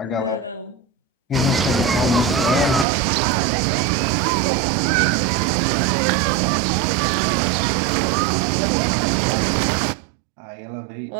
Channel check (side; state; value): left; drops out; at 2.9 s